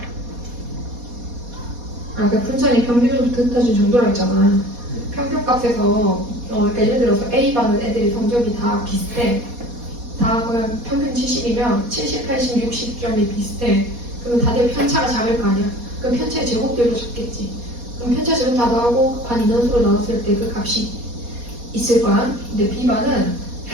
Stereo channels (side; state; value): left; late; 4.2 ms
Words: 나. 아까 분산이 평균으로부터 흩어진 정도라 했잖아. 평균값에서 그러니까 예를 들어서 A반은 애들이 성적이 다 비슷해. 다 그냥 평균 70이면 70, 80, 60점이 비슷해. 그러면 다들 편차가 작을 거 아니야. 그럼 편차의 제곱들도 적겠지. 그럼 편차 제곱 다 더하고 반 인원수로 나눴을 때 그 값이 있을 거야. 근데 B반은